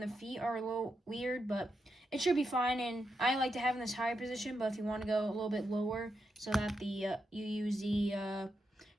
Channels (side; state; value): both; normal; correlation 0.84